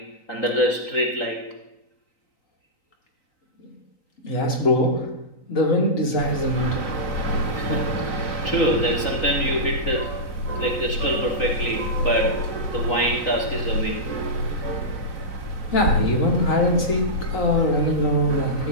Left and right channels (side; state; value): right; late; 3.9 ms